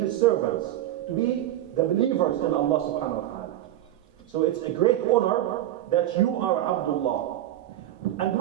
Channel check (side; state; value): left; quieter; 13.3 dB